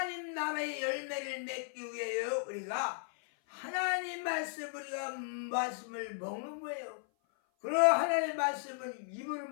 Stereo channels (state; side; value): silent; right; 54 dB below the other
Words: 나라의 열매를 맺기 위해요. 우리가 하나님 말씀을 먹는 거예요. 그럼 하나님 말씀은 입으로